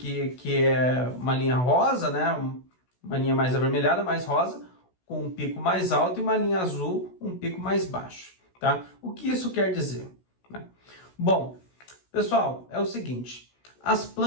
que é uma linha rosa, né? Uma linha mais avermelhada, mais rosa, com um pico mais alto, e uma linha azul, um pico mais baixo. Tá? O que isso quer dizer? Né? Bom, pessoal, é o seguinte. As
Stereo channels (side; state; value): right; late; 16 ms